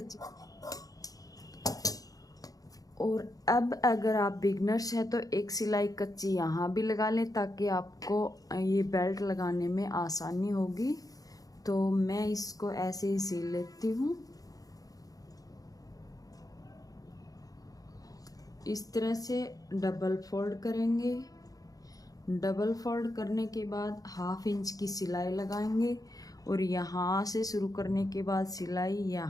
और अब अगर आप बिगनर्स हैं तो एक सिलाई कच्ची यहाँ भी लगा लें ताकि आपको ये बेल्ट लगाने में आसानी होगी। तो मैं इसको ऐसे ही सिल लेती हूँ। इस तरह से डबल फोल्ड करेंगे। डबल फोल्ड करने के बाद 1/2 इंच की सिलाई लगाएंगे और यहाँ से शुरू करने के बाद सिलाई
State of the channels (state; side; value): late; right; 0.17 ms